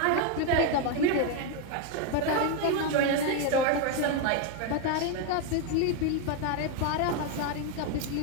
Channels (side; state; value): both; different; correlation 0.02